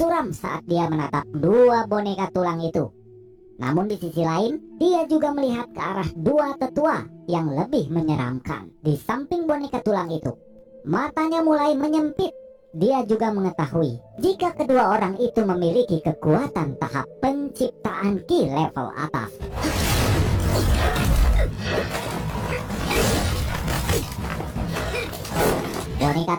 saat dia menatap 2 boneka tulang itu. Namun di sisi lain, dia juga melihat ke arah 2 tetua yang lebih menyeramkan. Di samping boneka tulang itu, matanya mulai menyempit. Dia juga mengetahui jika kedua orang itu memiliki kekuatan tahap penciptaan ki level atas. Boneka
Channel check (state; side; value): identical; both; correlation 1.00